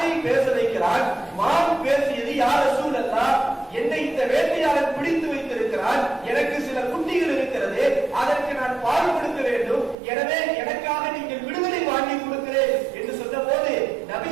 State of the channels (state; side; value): drops out; left; at 10.0 s